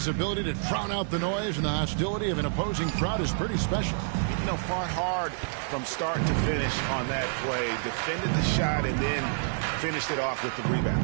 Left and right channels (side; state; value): left; silent; digital silence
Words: ability to drown out the noise and the hostility of an opposing crowd is pretty special. You know, fought hard from start to finish on that play, defended the shot, and then finished it off with the rebound.